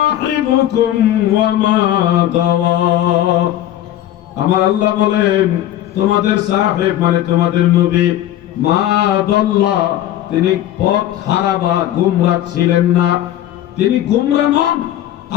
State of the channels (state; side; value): quieter; right; 12.6 dB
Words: ওয়া মা গাওয়া। আমার আল্লাহ বলেন তোমাদের সাহেব মানে তোমাদের নবী, মা দাল্লা, তিনি পথ হারা বা গুমরাহ ছিলেন না, তিনি গুমরাহ নন।